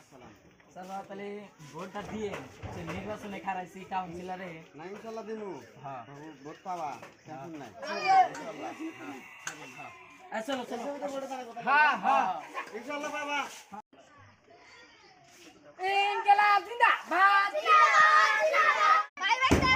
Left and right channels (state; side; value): identical; both; correlation 1.00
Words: স্যার তাহলে ভোটটা দিয়ে যে নির্বাচনে খারাইছি কাউন্সিলরে না ইনশাআল্লাহ দিমু। হ্যাঁ ভোট পাবা, টেনশন নাই। চলো চলো হ্যাঁ হ্যাঁ ইনশাআল্লাহ পাবা। ইনকিলাব জিন্দাবাদ ভাই বাচ্চা